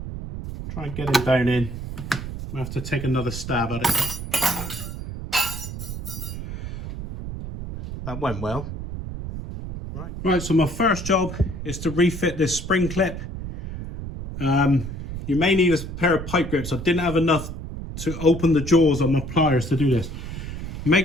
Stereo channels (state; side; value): noise; right; rumble, 8 dB below the sound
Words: Try and get it down in. I have to take another stab at it. That went well. Right, so my first job is to refit this spring clip. You may need a pair of pipe grips. I didn't have enough to open the jaws on my pliers to do this.